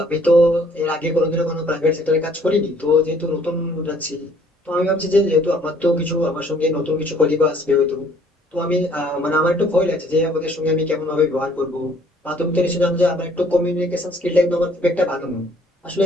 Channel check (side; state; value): both; normal; correlation 0.60